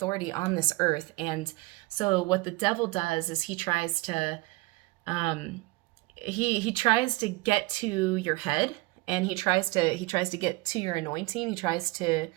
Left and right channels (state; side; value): quieter; left; 22.1 dB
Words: on this earth. And so what the devil does is he tries to he tries to get to your head, and he tries to get to your anointing. He tries to